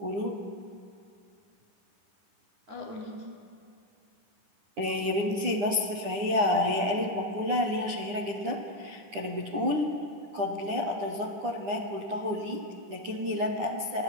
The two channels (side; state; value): left; late; 9.9 ms